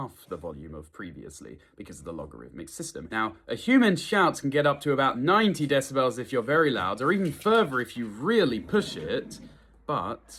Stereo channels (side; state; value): both; identical; correlation 1.00